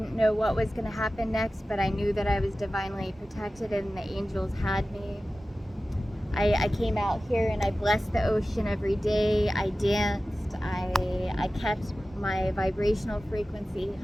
know what was going to happen next, but I knew that I was divinely protected and the angels had me. I came out here and I blessed the ocean every day. I danced. I kept my vibrational frequency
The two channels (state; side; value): normal; both; correlation 0.95